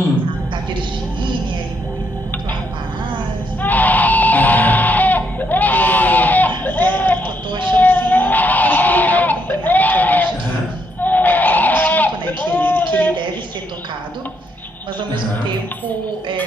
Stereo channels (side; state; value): both; normal; correlation 0.75